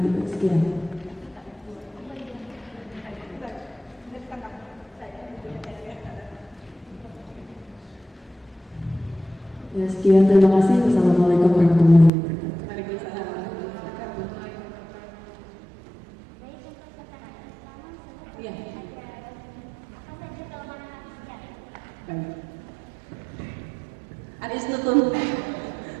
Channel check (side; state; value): left; drops out; at 12.1 s